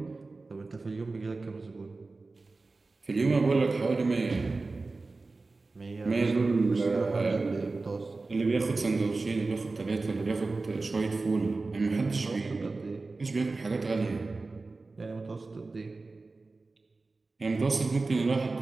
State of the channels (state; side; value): quieter; left; 3.6 dB